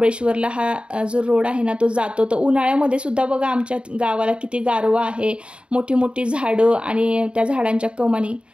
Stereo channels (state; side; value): late; left; 0.056 ms